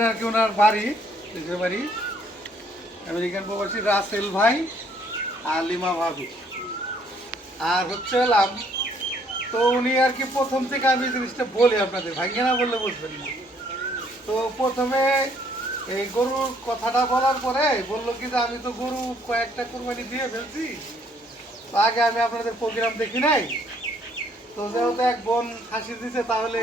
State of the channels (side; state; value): both; normal; correlation 0.65